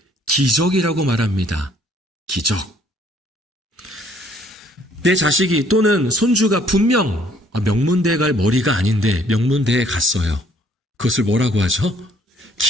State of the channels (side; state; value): both; normal; correlation 0.62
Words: 기적이라고 말합니다. 기적. 내 자식이 또는 손주가 분명 명문대에 갈 머리가 아닌데 명문대에 갔어요. 그것을 뭐라고 하죠?